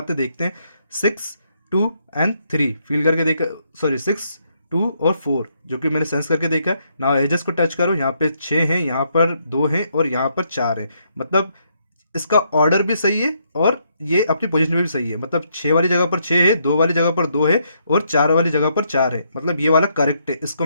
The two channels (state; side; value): inverted; both; correlation -0.75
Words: देखते हैं। 6, 2 एंड 3 फील करके देखा, सॉरी 6, 2 और 4 जो कि मैंने सेंस करके देखा। ना एजेस को टच करो, यहाँ पे 6 हैं, यहाँ पर 2 हैं और यहाँ पर 4 हैं। मतलब इसका ऑर्डर भी सही है और ये अपनी पोजीशन में भी सही है। मतलब 6 वाली जगह पर 6 है, 2 वाली जगह पर 2 है और 4 वाली जगह पर 4 है। मतलब ये वाला करेक्ट है। इसको